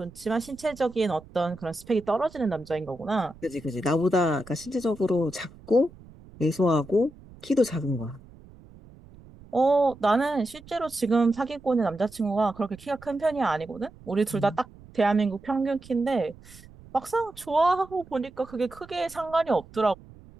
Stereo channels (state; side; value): noise; right; rumble, 21 dB below the sound